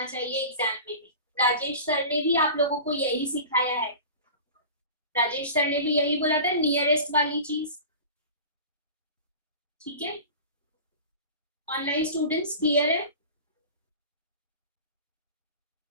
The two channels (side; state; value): both; inverted; correlation -0.35